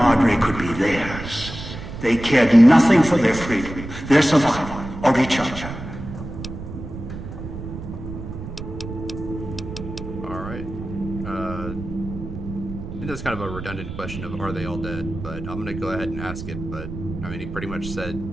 could be theirs, they cared nothing for their freedom, their survival, or each other. That's kind of a redundant question of are they all dead, but I'm gonna go ahead and ask it. But I mean, he pretty much said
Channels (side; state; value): right; noise; rumble, 9 dB below the sound